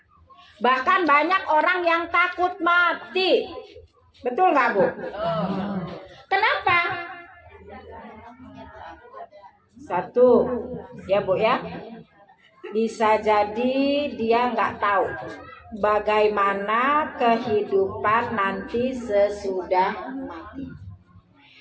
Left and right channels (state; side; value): identical; both; correlation 1.00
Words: Bahkan banyak orang yang takut mati. Betul nggak Bu? Kenapa? Satu, ya Bu ya, bisa jadi dia nggak tahu bagaimana kehidupan nanti sesudah mati.